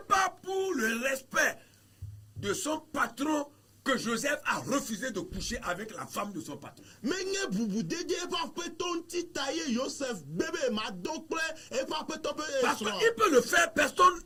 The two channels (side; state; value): both; identical; correlation 1.00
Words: pas pour le respect de son patron que Joseph a refusé de coucher avec la femme de son patron. menye bubudede eƒe aƒetɔ ŋuti ta ye Yosef bebe ma do kple eƒe aƒetɔ ƒe Parce esrɔ̃. qu'il peut le faire, personne